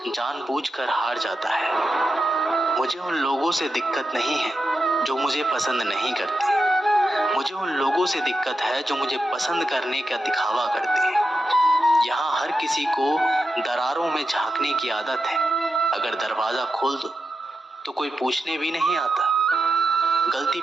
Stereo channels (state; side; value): normal; both; correlation 0.88